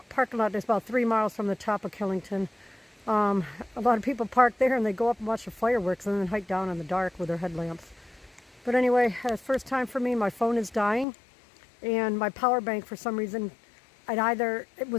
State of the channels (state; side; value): drops out; right; at 11.1 s